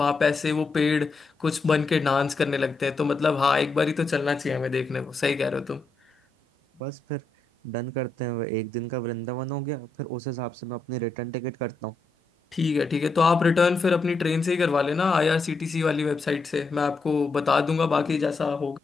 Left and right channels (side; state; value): right; quieter; 3.7 dB